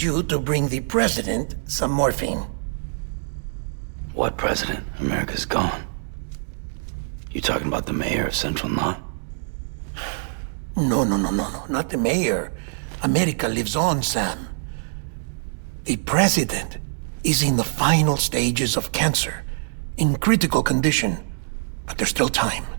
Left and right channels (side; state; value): left; silent; digital silence